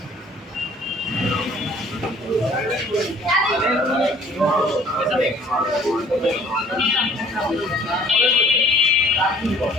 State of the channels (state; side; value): normal; both; correlation 0.55